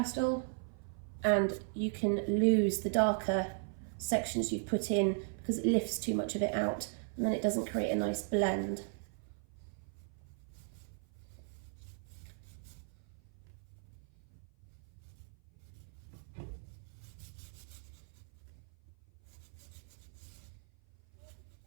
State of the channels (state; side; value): silent; left; 53 dB below the other